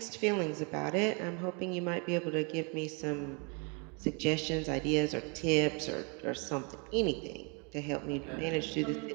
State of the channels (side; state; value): left; quieter; 34.5 dB